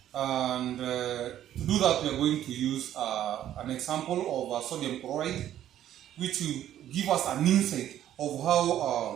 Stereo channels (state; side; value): quieter; left; 11.7 dB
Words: and to do that we are going to use an example of sodium chloride, which will give us an insight of